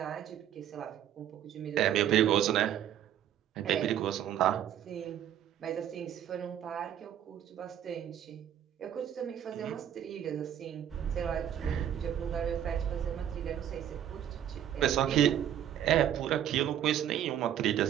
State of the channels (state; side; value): quieter; left; 10.4 dB